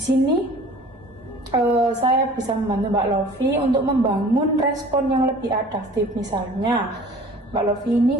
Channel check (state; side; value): normal; both; correlation 0.46